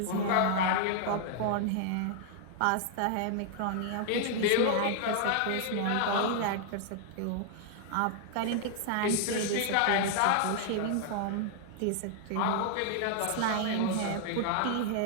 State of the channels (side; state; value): both; different; correlation 0.00